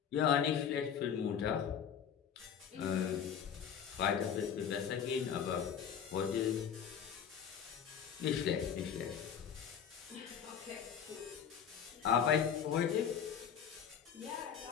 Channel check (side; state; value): right; quieter; 7.9 dB